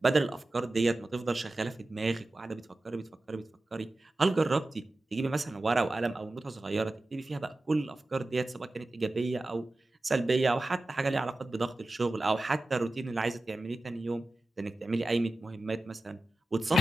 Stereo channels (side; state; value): both; normal; correlation 0.95